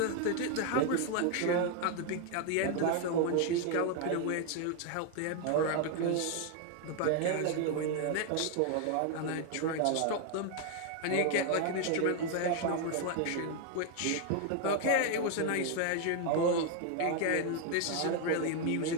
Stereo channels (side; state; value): both; different; correlation 0.01